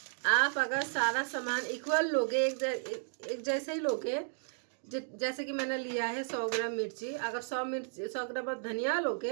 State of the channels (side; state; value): left; silent; digital silence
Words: आप अगर सारा सामान इक्वल लोगे, एक जैसे ही लोगे, जैसे कि मैंने लिया है 100 ग्राम मिर्ची, अगर 100 ग्राम धनिया